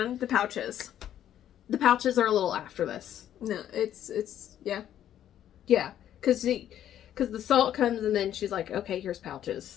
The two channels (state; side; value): quieter; right; 11.0 dB